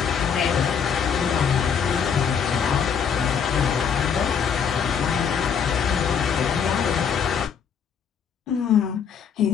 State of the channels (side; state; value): right; quieter; 7.0 dB